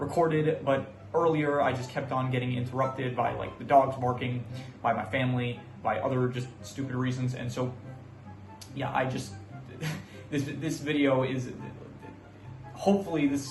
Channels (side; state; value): both; identical; correlation 1.00